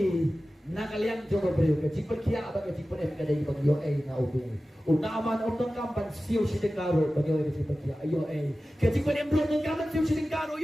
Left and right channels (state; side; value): normal; both; correlation 0.95